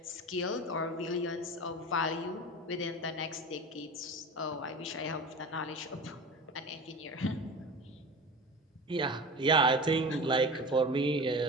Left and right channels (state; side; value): normal; both; correlation 0.32